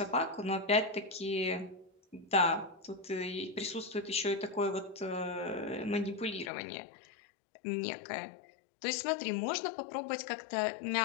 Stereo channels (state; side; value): drops out; right; at 6.5 s